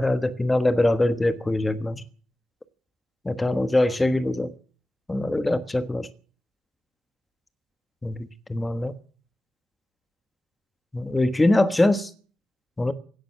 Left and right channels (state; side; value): normal; both; correlation 0.96